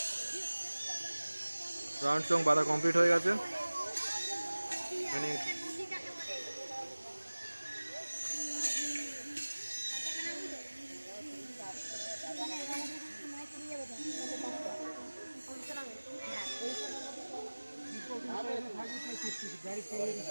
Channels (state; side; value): inverted; both; correlation -1.00